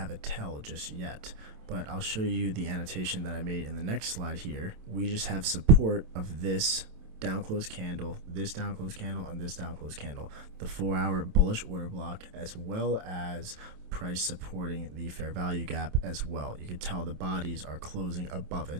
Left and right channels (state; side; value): late; left; 27 ms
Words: a tell just yet. But I'll show you the annotation that I made in the next slide here. We just have support of this down close candle, this down close candle, and this down close candle, the 4-hour bullish order block, as well as price supporting the fair value gap as well. You can tell the bodies are closing above